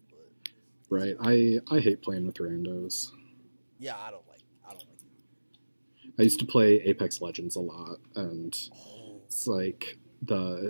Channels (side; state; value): both; inverted; correlation -1.00